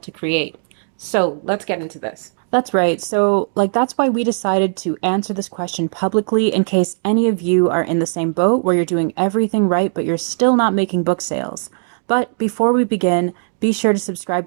to create. So let's get into this. That's right. So, that's why we decided to answer this question publicly in case any of you are in the same boat where you're doing everything right, but you're still not making book sales. But before we begin, be sure to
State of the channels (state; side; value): silent; left; digital silence